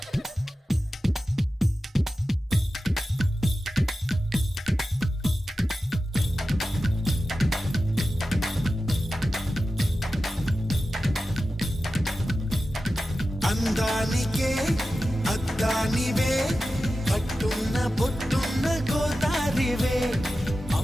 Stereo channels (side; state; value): both; normal; correlation 0.93